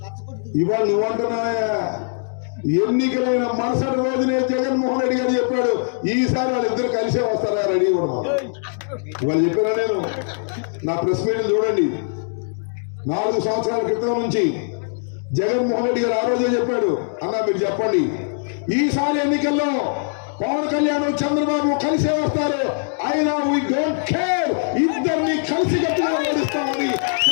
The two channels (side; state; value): right; silent; digital silence